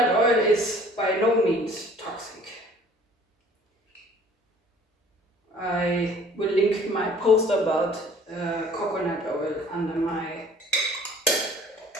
oil is by no means toxic. I will link my post about coconut oil under in my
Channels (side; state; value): both; normal; correlation 0.52